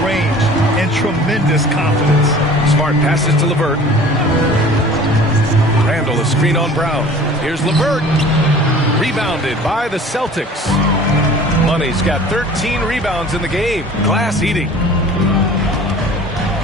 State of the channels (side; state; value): both; normal; correlation 0.45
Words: range and tremendous confidence. Smart passes to LeVert. Randall a screen on Brown. Here's LeVert. Rebounded by the Celtics. Money's got 13 rebounds in the game. Glass eating.